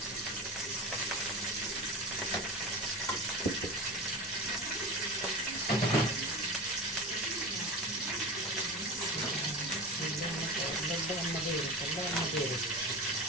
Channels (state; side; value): normal; both; correlation 0.29